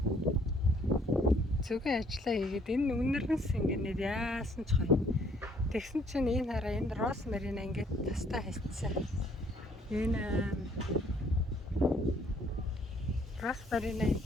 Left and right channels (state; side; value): normal; both; correlation 0.63